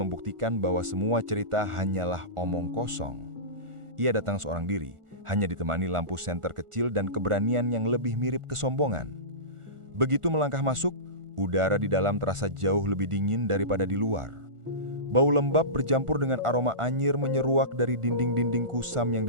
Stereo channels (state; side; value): late; left; 1.4 ms